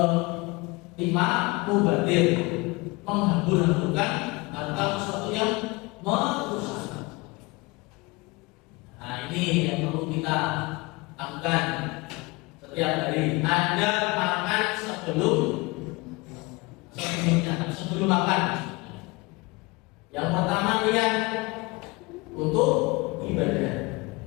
kelima, mubazir, menghambur-hamburkan atau sesuatu yang merusak. Nah, ini yang perlu kita lakukan setiap hari. Anda makan sebelum makan. Yang pertama niat untuk ibadah.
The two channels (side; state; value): right; quieter; 25.1 dB